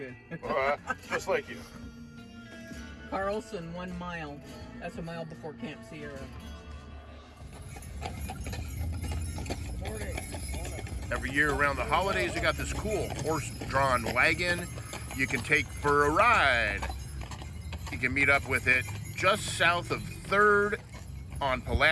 Just like you. Carlson, 1 mile. That's a mile before Camp Sierra. Morning. Every year around the holidays, they got this cool horse-drawn wagon you can take for a ride. You can meet up with it just south of 3rd on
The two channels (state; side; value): identical; both; correlation 1.00